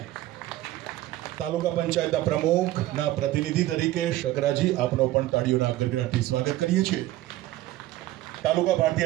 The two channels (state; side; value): quieter; left; 15.7 dB